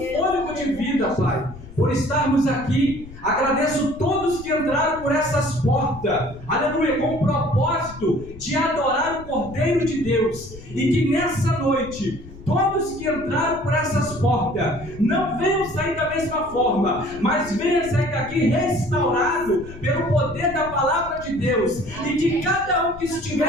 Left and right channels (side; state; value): left; noise; rumble, 16 dB below the sound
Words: de vida, Pai, por estarmos aqui. Agradeço todos que entraram por essas portas, aleluia, com o propósito de adorar o Cordeiro de Deus, e que nessa noite todos que entraram por essas portas não venham sair da mesma forma, mas venham sair daqui restaurado pelo poder da palavra de Deus, e que cada um que